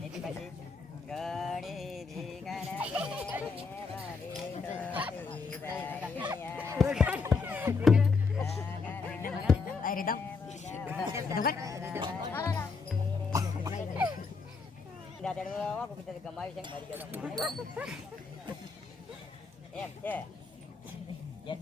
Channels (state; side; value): quieter; right; 4.7 dB